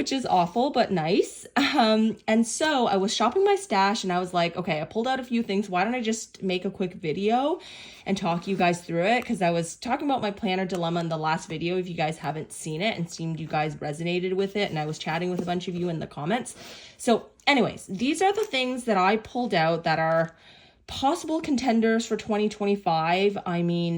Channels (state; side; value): identical; both; correlation 1.00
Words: is awful, but nice. And so I was shopping my stash and I was like, okay, I pulled out a few things. Why don't I just make a quick video and talk you guys through it? Because I was talking about my planner dilemma in the last video, if you guys haven't seen it, and seemed you guys resonated with it. And I was chatting with a bunch of you in the comments. So anyways, these are the things that I pulled out that are possible contenders for 2025. I